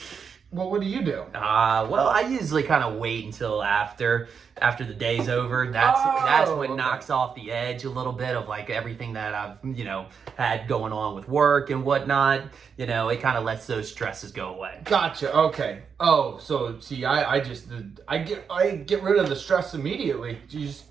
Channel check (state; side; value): quieter; left; 6.4 dB